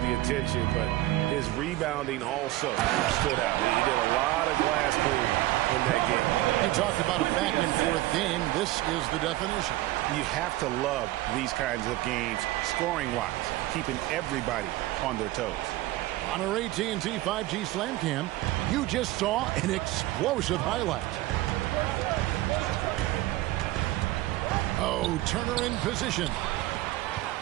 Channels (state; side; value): quieter; left; 17.0 dB